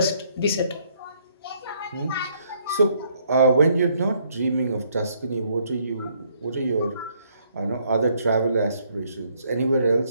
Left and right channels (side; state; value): both; inverted; correlation -0.69